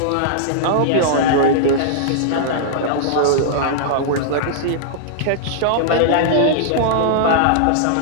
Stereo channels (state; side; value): different; both; correlation -0.02